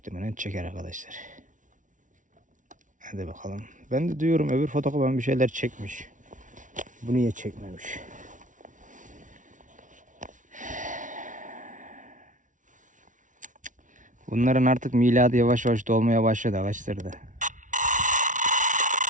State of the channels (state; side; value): late; left; 0.37 ms